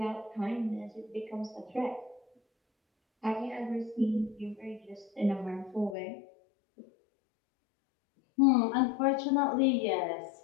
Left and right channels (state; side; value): drops out; right; at 6.0 s